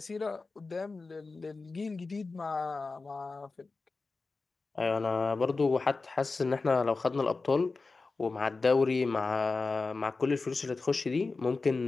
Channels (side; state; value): right; quieter; 3.9 dB